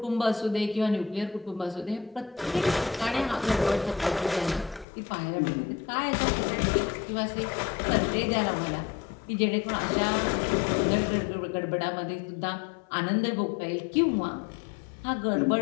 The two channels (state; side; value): drops out; right; at 4.9 s